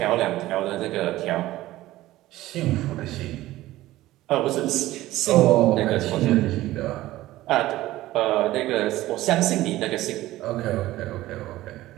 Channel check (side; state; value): left; quieter; 16.2 dB